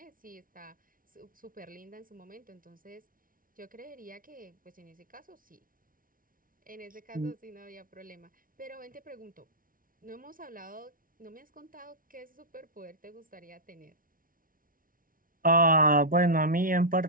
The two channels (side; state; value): left; late; 0.40 ms